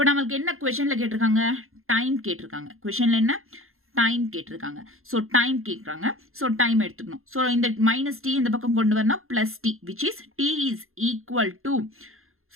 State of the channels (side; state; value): left; late; 0.61 ms